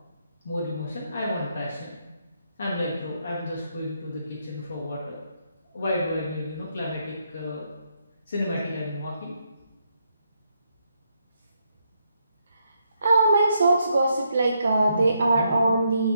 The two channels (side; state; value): both; inverted; correlation -0.77